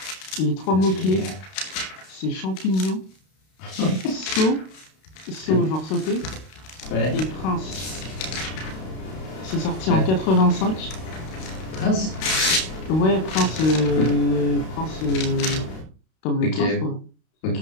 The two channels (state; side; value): late; right; 32 ms